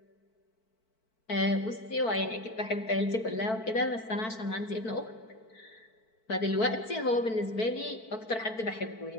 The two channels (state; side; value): late; right; 4.5 ms